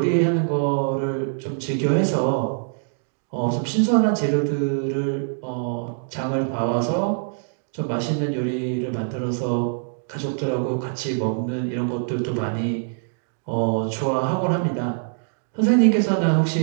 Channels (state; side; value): silent; left; digital silence